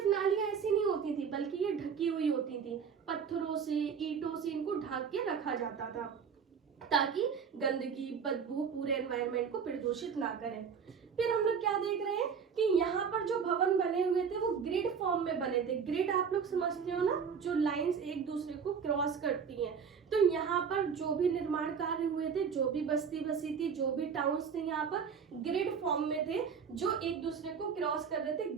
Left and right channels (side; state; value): left; quieter; 6.6 dB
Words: नालियां ऐसी नहीं होती थी, बल्कि ये ढकी हुई होती थी, पत्थरों से, ईंटों से इनको ढक के रखा जाता था, ताकि गंदगी, बदबू पूरे एनवायरनमेंट को प्रदूषित ना करें। फिर हम लोग क्या देख रहे हैं कि यहाँ पर जो भवन बने हुए थे वो ग्रिड फॉर्म में बने थे। ग्रिड आप लोग समझते हो ना, जो लाइंस एक दूसरे को क्रॉस करती हैं। तो यहाँ पर जो भी निर्माण कार्य हुए थे, जो भी बस्ती बसी थी, जो भी टाउन्स थे, यहाँ पर ग्रिड फॉर्म में थे, जो एक दूसरे को क्रॉस कर रहे थे,